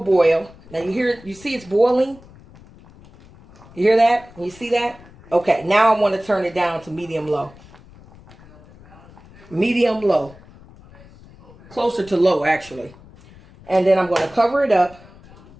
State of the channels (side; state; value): left; noise; rumble, 23 dB below the sound